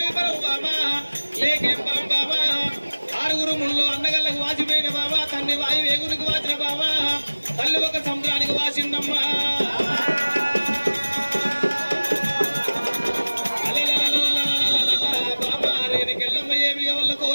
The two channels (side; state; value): both; inverted; correlation -1.00